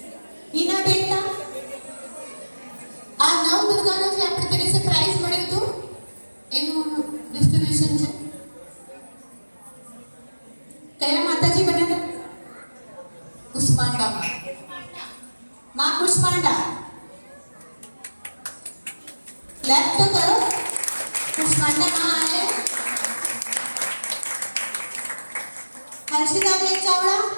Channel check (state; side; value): inverted; both; correlation -1.00